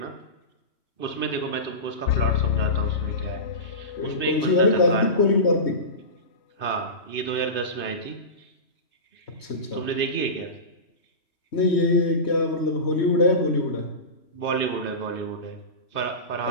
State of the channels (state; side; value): late; right; 3.2 ms